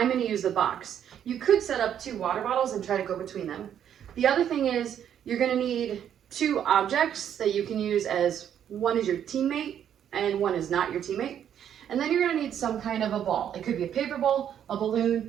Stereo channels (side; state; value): left; quieter; 9.5 dB